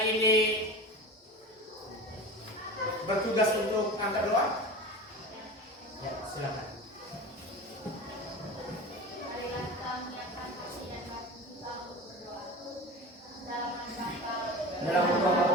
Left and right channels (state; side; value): normal; both; correlation 0.32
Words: ini bertugas untuk angkat doa, ya silakan.